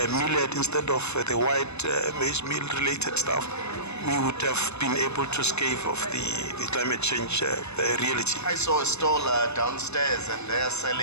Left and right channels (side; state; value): right; late; 0.81 ms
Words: millet instead of the white maize meal related stuff, we would have been able to scave off the climate change reality. I saw a stall downstairs and they're